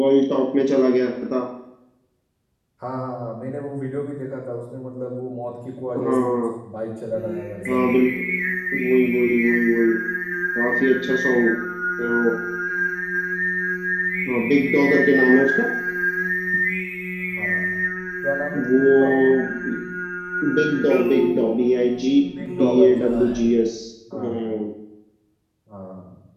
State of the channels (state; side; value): identical; both; correlation 1.00